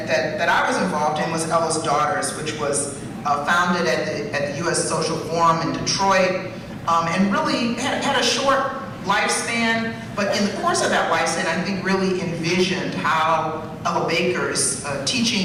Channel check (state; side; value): identical; both; correlation 1.00